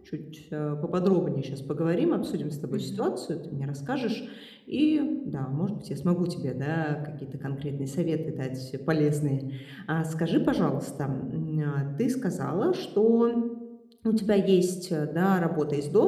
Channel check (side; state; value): both; identical; correlation 1.00